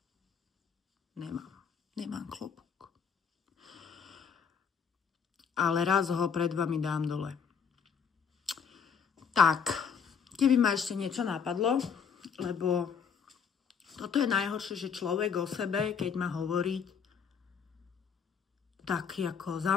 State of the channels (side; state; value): right; quieter; 6.8 dB